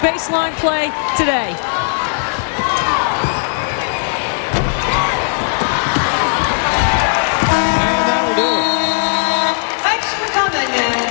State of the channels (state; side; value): silent; right; digital silence